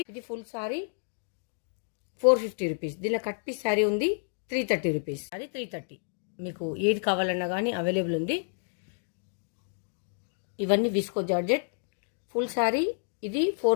ఇది ఫుల్ శారీ 450 రూపీస్. దీనిలో కట్ పీస్ శారీ ఉంది 330 రూపీస్. అది 330. మీకు ఏది కావాలన్నా కానీ అవైలబుల్ ఉంది. ఇవన్నీ విస్కో జార్జెట్ ఫుల్ శారీ. ఇది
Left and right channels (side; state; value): right; silent; digital silence